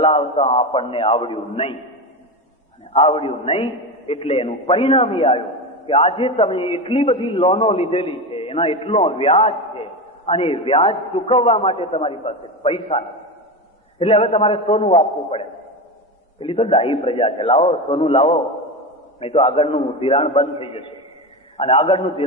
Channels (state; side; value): normal; both; correlation 0.19